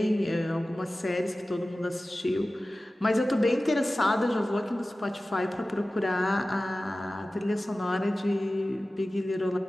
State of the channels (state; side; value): normal; both; correlation 0.96